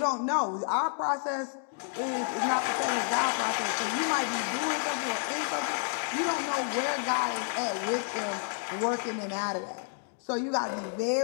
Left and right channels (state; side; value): silent; right; 58 dB below the other